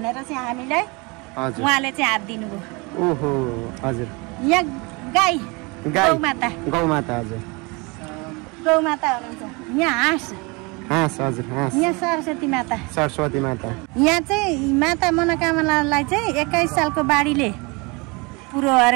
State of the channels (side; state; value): left; quieter; 27.8 dB